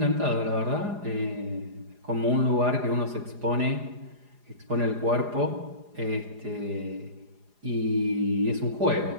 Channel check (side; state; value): left; late; 4.9 ms